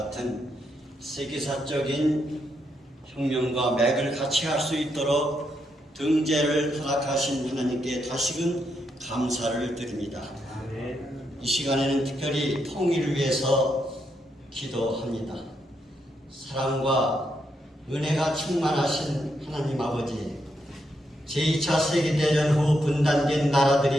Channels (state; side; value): normal; both; correlation 0.80